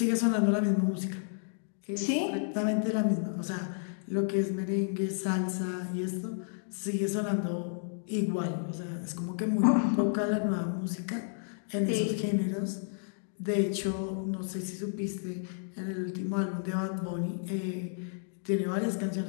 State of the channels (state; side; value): silent; right; digital silence